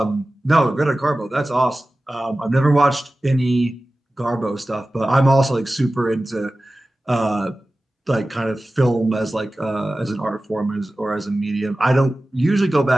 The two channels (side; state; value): both; normal; correlation 0.96